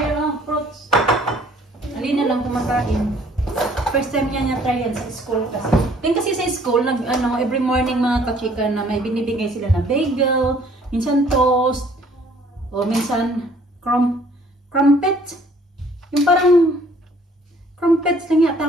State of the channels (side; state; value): both; normal; correlation 0.58